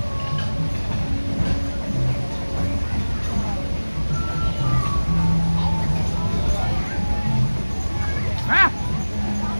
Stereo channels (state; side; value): inverted; both; correlation -1.00